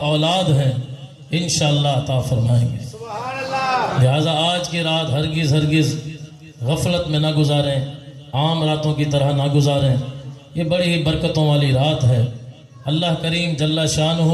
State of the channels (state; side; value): identical; both; correlation 1.00